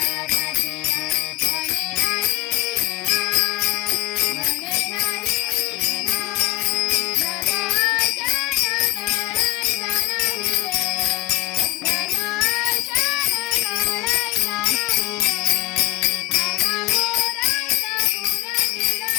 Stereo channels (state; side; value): quieter; right; 17.3 dB